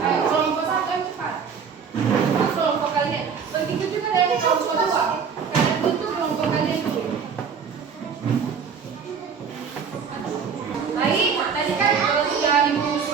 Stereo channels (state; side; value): quieter; left; 6.4 dB